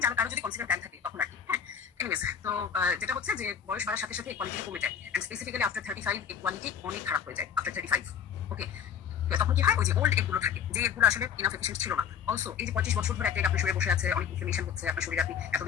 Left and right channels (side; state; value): right; quieter; 7.9 dB